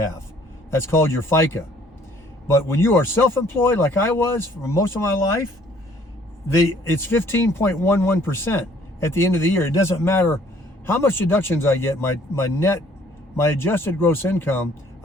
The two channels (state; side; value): normal; both; correlation 0.59